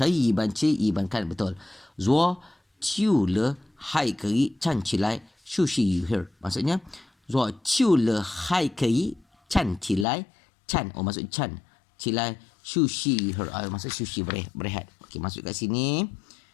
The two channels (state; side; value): drops out; right; at 10.1 s